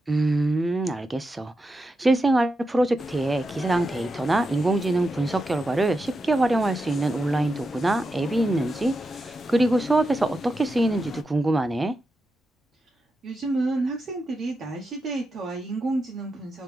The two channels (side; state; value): both; normal; correlation 0.88